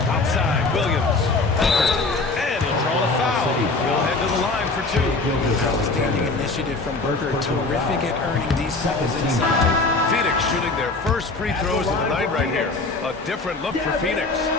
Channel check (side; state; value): right; quieter; 3.5 dB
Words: Outside Williams. And he'll draw the foul. He'll head to the line for 2. Outstanding initiative from Booker. Terrific at earning these fouls inside. Phoenix shooting their first free throws of the night right here. A different look for Phoenix.